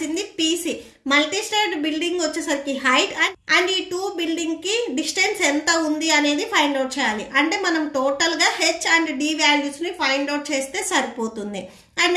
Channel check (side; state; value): both; identical; correlation 1.00